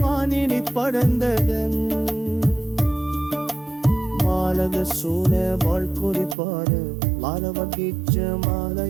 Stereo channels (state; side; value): drops out; left; at 6.4 s